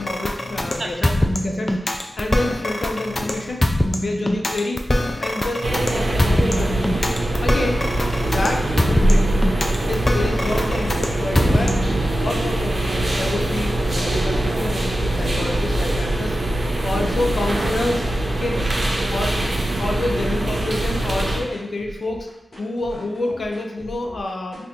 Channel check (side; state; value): both; normal; correlation 0.93